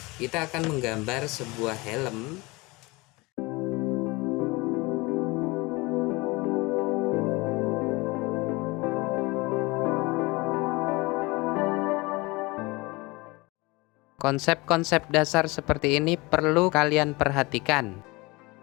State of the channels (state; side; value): quieter; right; 24.1 dB